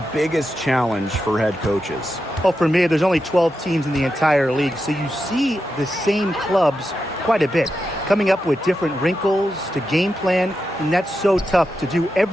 biggest challenge for head coaches? Well, for me, there's only 12 teams in the entire league, so you see the same clubs quite a bit, coming up with different wrinkles to game plan, and that's so tough to do.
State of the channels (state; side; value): normal; both; correlation 0.88